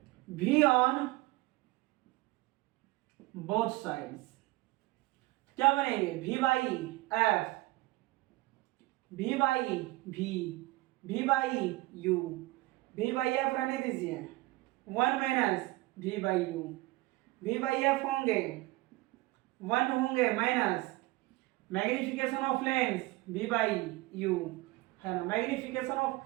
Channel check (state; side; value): quieter; left; 20.4 dB